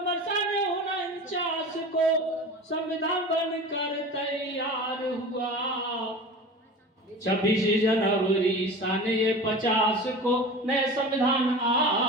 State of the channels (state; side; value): normal; both; correlation 0.34